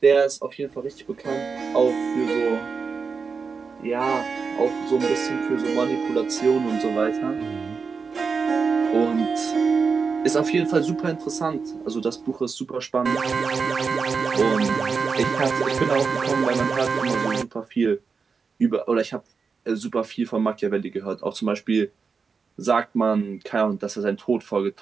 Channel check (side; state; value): left; quieter; 5.2 dB